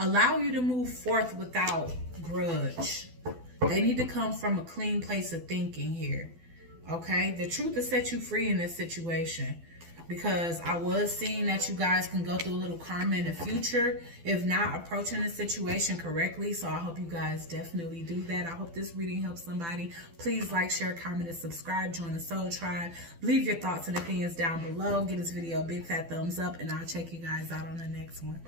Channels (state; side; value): late; left; 12 ms